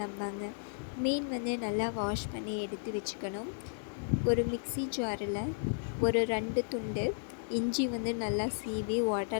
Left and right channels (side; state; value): right; silent; digital silence